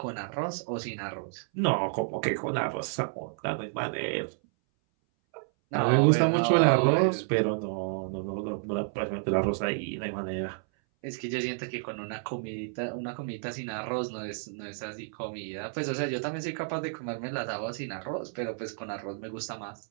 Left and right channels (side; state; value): left; silent; 57 dB below the other